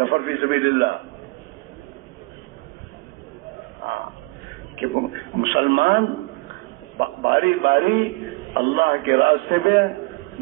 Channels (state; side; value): quieter; left; 26.0 dB